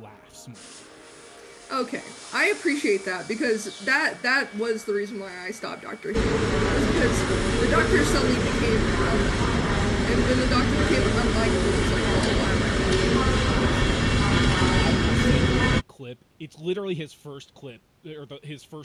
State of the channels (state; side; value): identical; both; correlation 1.00